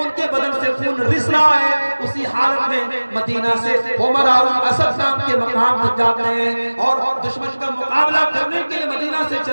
کے بدن سے خون رس رہا ہے. اسی حالت میں مدینہ سے عمر اسد نام کے مقام تک جاتے ہیں اور دشمن کا مقابلہ کرنے کے لیے مدینہ سے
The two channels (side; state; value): both; inverted; correlation -1.00